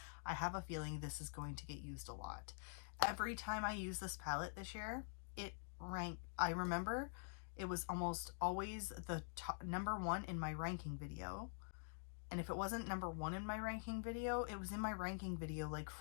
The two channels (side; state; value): right; silent; digital silence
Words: I have a feeling this is going to get used a lot. Every time I use this palette this year, it ranked. I remember it was almost always the number one in my ranking video. And if it wasn't number one in my ranking video, it was in my ranking video like